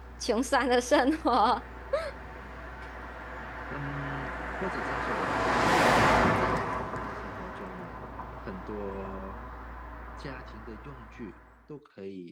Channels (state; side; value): identical; both; correlation 1.00